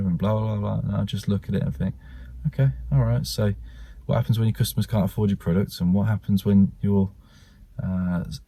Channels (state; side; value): identical; both; correlation 1.00